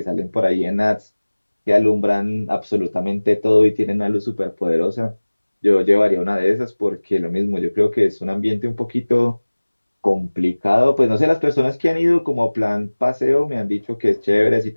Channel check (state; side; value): inverted; both; correlation -1.00